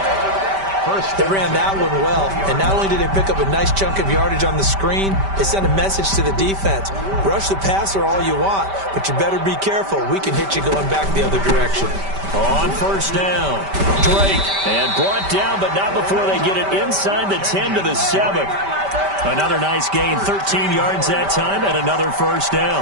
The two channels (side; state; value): left; late; 5.1 ms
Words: They ran that one well, and not only did they pick up a nice chunk of yardage on the screen, they sent a message to the defense. Rush the passer all you want, but you better be careful. We can hit you going back the other direction. On first down, Drake, and brought down, but not before they get it inside the 10 to the 7. Another nice gain, 13 yards that time, and another first